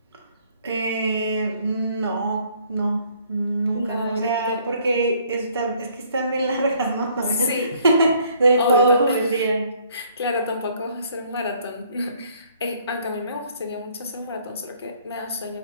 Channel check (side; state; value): both; inverted; correlation -0.62